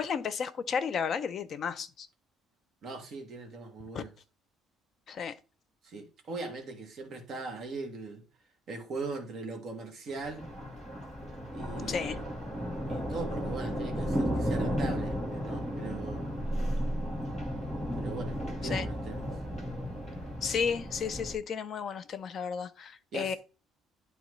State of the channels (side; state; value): both; normal; correlation 0.78